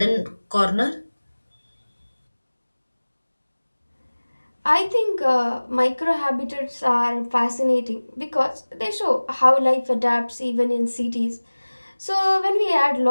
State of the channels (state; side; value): inverted; both; correlation -1.00